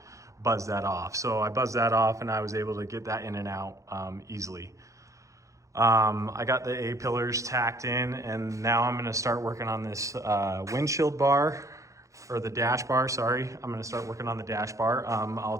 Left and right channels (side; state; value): left; late; 0.15 ms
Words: buzz that off. So I buzzed that off and I was able to get that in and out easily. I got the A pillars tacked in, and now I'm gonna start working on this windshield bar, or the dash bar, sorry. I'm gonna start working on the dash bar. I'll